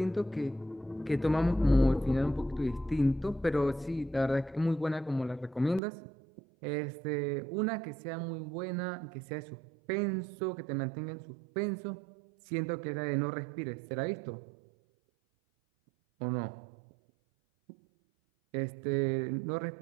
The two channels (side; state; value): left; drops out; at 5.8 s